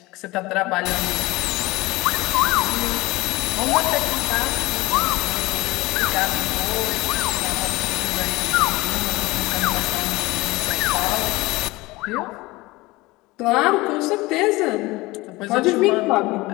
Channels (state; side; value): quieter; right; 21.1 dB